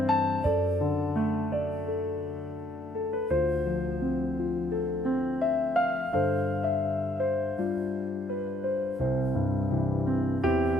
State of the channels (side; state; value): both; normal; correlation 0.69